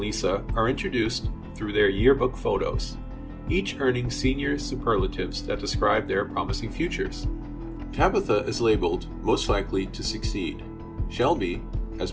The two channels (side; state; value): both; identical; correlation 1.00